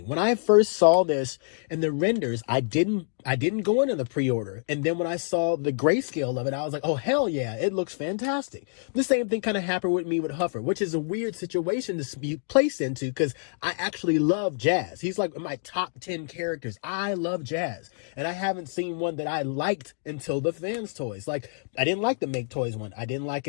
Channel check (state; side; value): silent; right; digital silence